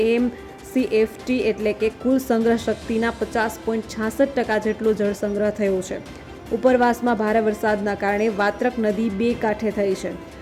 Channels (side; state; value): both; identical; correlation 1.00